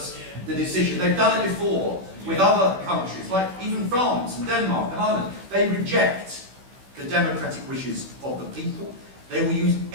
the decision. They've done it before with other countries, like even France and Denmark and Ireland. They reject the democratic wishes of the people. They will use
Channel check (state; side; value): late; left; 16 ms